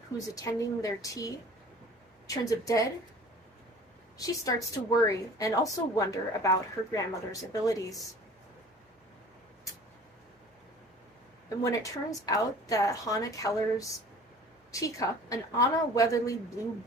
who's attending their tea, turns up dead, she starts to worry and also wonder about her grandmother's abilities. And when it turns out that Hannah Keller's teacup, an Anna Weatherly Blue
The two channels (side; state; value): both; normal; correlation 0.46